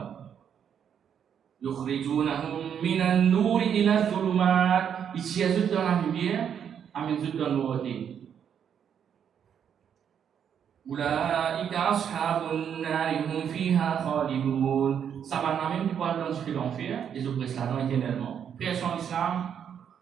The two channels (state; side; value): quieter; left; 8.3 dB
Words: يخرجونهم من النور إلى الظلمات. Ils tient eux dans la lumière, amène eux dans l'autre. أولئك أصحاب النار هم فيها خالدون. Ça va même du poil dans ce l'enfer et je presse là-dedans éternellement. Frères en islam,